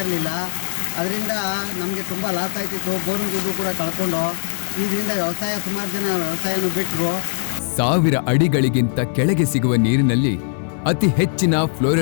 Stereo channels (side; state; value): right; silent; 60 dB below the other